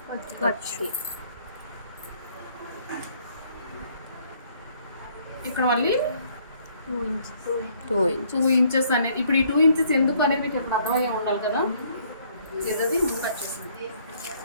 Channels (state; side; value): inverted; both; correlation -0.64